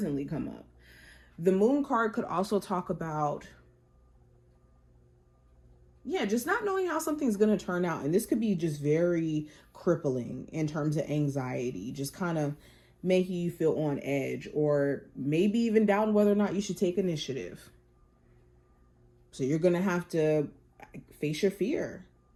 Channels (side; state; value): both; identical; correlation 1.00